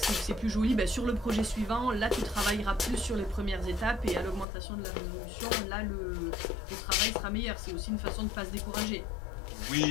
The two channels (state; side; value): drops out; right; at 4.5 s